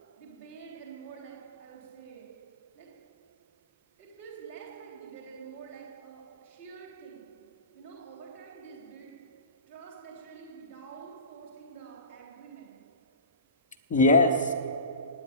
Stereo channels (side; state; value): both; inverted; correlation -0.32